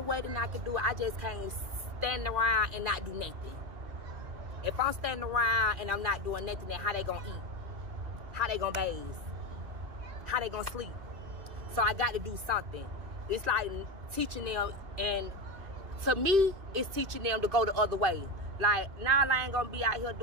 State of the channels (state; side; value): late; left; 2.5 ms